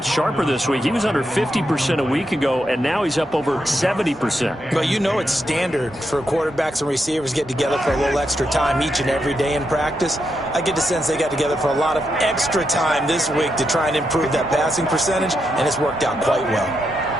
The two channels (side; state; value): both; normal; correlation 0.83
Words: sharper this week. He was under 50% a week ago, and now he's up over 70%. But you know it's standard for quarterbacks and receivers get together for a little extra time each and every day in practice. I get the sense they got together for a lot of extra time this week to try and improve that passing percentage, and it's worked out quite well.